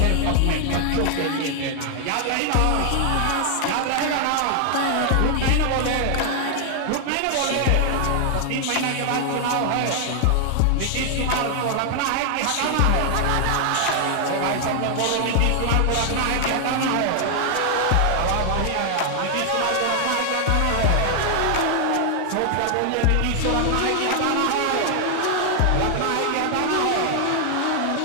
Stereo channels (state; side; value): different; both; correlation 0.00